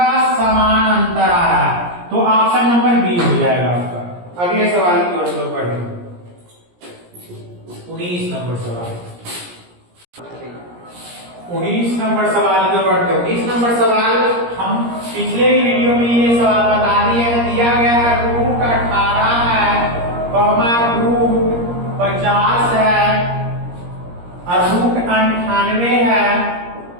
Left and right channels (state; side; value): late; left; 17 ms